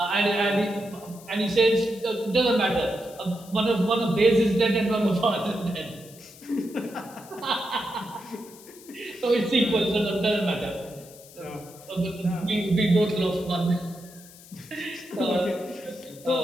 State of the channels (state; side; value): noise; left; hiss, 21 dB below the sound